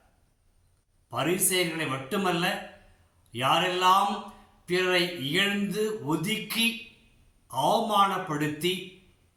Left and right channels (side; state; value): both; identical; correlation 1.00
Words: பரிசேயர்களை மட்டுமல்ல, யாரெல்லாம் பிறரை இகழ்ந்து ஒதுக்கி அவமானப்படுத்தி